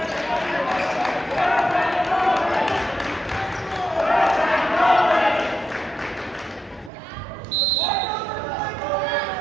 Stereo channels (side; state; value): left; drops out; at 6.9 s